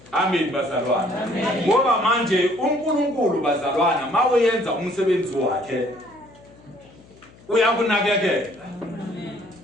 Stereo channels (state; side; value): noise; left; hum, 25 dB below the sound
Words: amen bazalwane ngoba manje uNkulunkulu bazalwane mawenza umsebenzi wakhe uyakunakekela